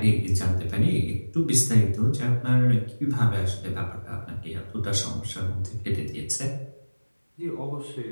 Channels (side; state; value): both; inverted; correlation -1.00